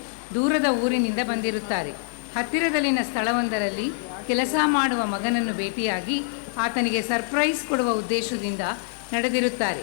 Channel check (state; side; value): silent; right; digital silence